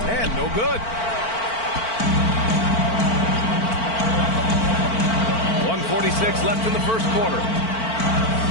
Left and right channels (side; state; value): right; late; 4.5 ms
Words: And no good. 1:46 left in the first quarter.